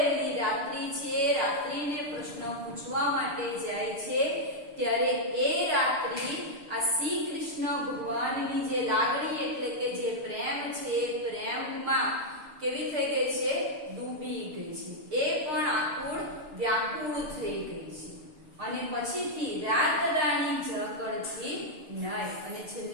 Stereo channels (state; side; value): late; left; 6.5 ms